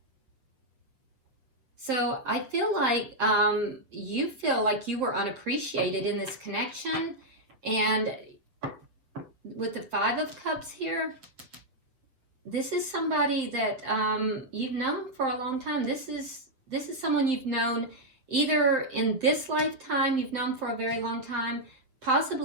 So I feel like you feel like you were unappreciated in this connection. And with the Five of Cups here, this is somebody that you've known for a long time. This is someone you've known either in this lifetime, you've known for a very long time,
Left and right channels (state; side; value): late; left; 7.6 ms